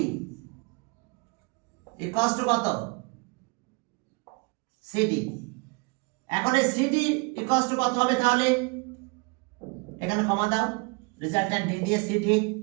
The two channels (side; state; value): left; quieter; 30.9 dB